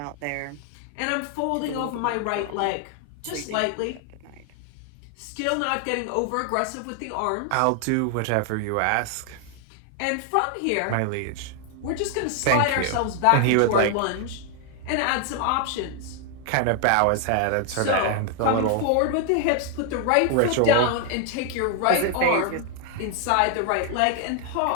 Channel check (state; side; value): different; both; correlation 0.00